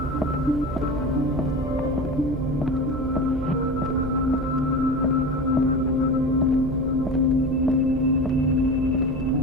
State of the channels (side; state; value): right; noise; hum, 9 dB below the sound